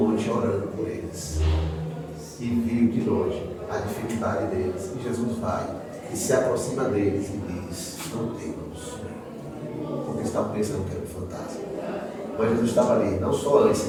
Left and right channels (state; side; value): identical; both; correlation 1.00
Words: orando por eles. E viu de longe a dificuldade deles. E Jesus vai e se aproxima deles e diz, não temas. Como eles estavam pensando que era um fantasma. Mas Jesus estava ali, não só antes,